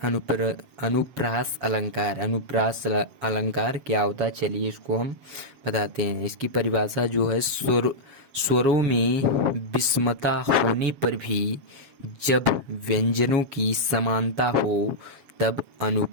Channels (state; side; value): late; left; 7.3 ms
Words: अनुप्रास अलंकार। अनुप्रास अलंकार क्या होता है, चलिए इसको हम बताते हैं। इसकी परिभाषा जो है, स्वरों में विषमता होने पर भी जब व्यंजनों की समानता हो तब